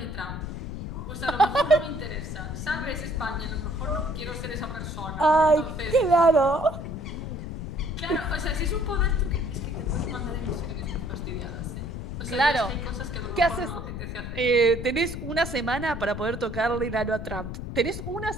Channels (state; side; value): noise; left; rumble, 7 dB below the sound